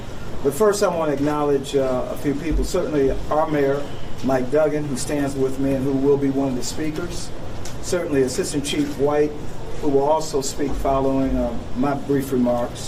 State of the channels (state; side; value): identical; both; correlation 1.00